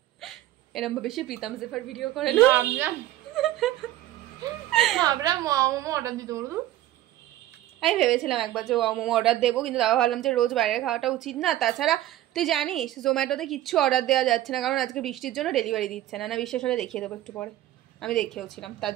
এরকম ভাবে সে প্রীতম জেফার ভিডিও করে না ভাবলাম মোমো অর্ডার দিতে বলবো আমি ভেবেছিলাম একবার যে মোমো অর্ডার দেবো কিন্তু তাও ভাবলাম যে রোজ বাইরে খাওয়াটা উচিত না তাছাড়া তুই জানিস জোম্যাটোতে কিচ্ছু অর্ডার দেওয়া যাচ্ছে না কারণ আজকে বৃষ্টির জন্য ডেলিভারি দিচ্ছে না বিশ্বাস হলে দেখিয়ে দেবো একটু পরে আমি দেখেওছিলাম তার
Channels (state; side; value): quieter; left; 14.2 dB